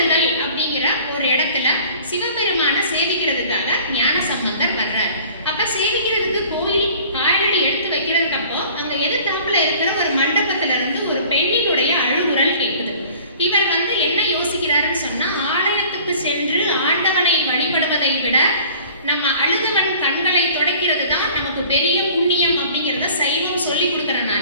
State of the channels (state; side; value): inverted; both; correlation -0.48